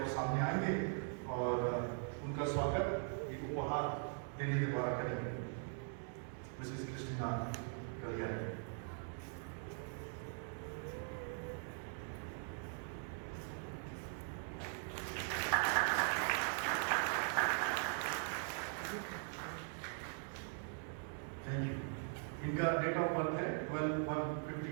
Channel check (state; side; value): silent; left; 50 dB below the other